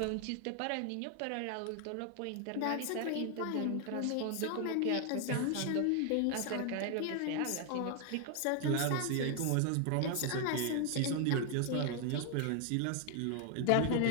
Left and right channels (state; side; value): different; both; correlation 0.00